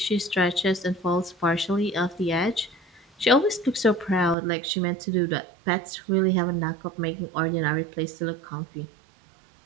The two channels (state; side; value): drops out; left; at 4.4 s